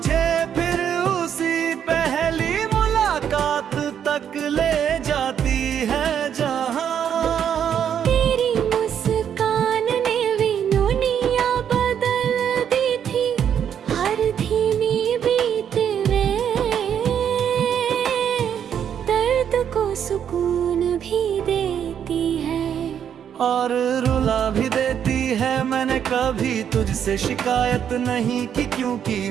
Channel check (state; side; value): quieter; left; 8.7 dB